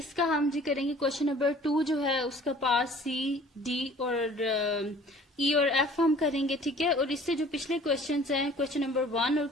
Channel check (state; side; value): normal; both; correlation 0.51